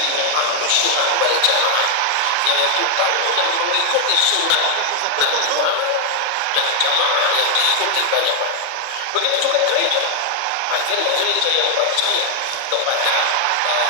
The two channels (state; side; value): different; both; correlation 0.00